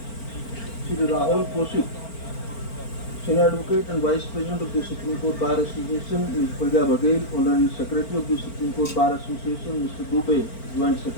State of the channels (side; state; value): right; late; 4.4 ms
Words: Sri Rahul Kaushik, Senior Advocate and Vice President of the Supreme Court Bar Association, Ms. Pragya Baghel, Honorary Secretary of the Supreme Court Bar Association, Mr. Dubey, Joint